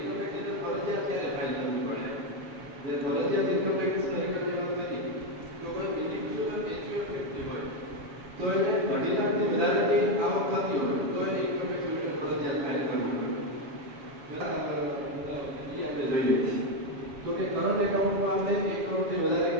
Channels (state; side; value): late; left; 7.2 ms